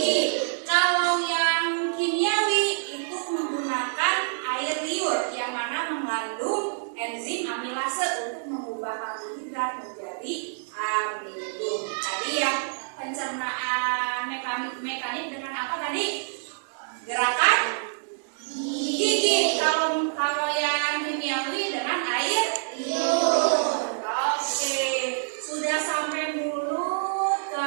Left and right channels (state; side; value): silent; left; digital silence